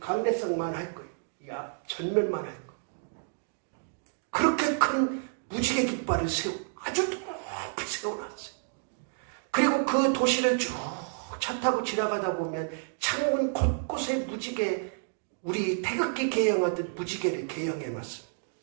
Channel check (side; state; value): left; silent; digital silence